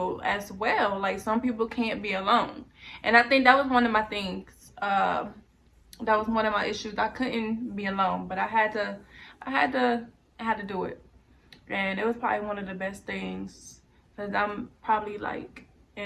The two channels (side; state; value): both; identical; correlation 1.00